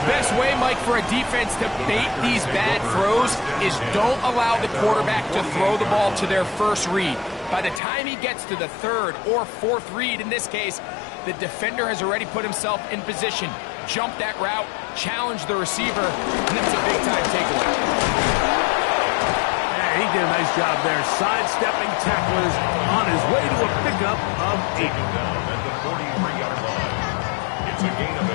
best way, Mike, for a defense to bait these bad throws is don't allow the quarterback to throw the ball to their first read. By the time he gets to the 3rd or 4th read, in this case, the defender has already put himself in position, jump that route, challenge the receiver, and it's a big-time takeaway. Yeah, he did a nice job there, sidestepping tacklers on his way to a pickup of 8. Down at the 43-yard line. It's a gain of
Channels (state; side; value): drops out; right; at 7.8 s